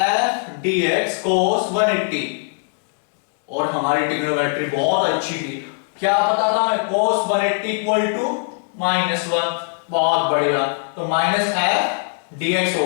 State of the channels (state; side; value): silent; right; 57 dB below the other